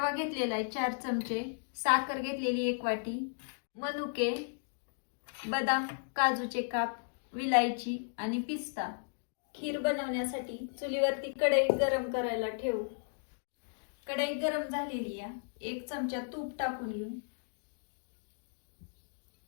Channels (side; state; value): right; silent; digital silence